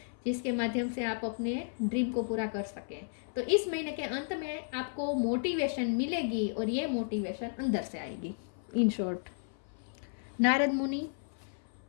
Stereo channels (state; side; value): silent; right; 55 dB below the other